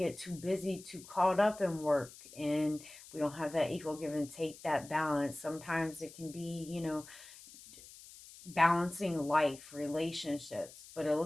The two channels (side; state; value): left; noise; hiss, 18 dB below the sound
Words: too busy, too caught up in work, and we don't have that equal give and take, that balance. Sometimes it can be, you know, balancing life, relationships. But it